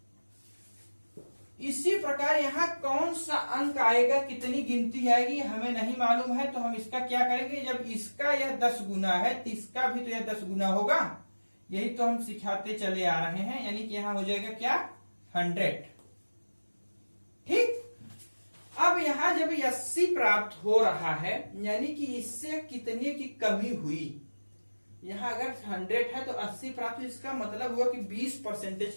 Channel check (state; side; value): inverted; both; correlation -1.00